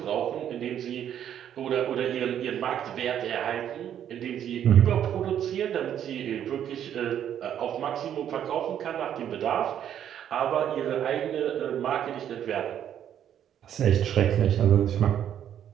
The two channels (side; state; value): left; quieter; 9.9 dB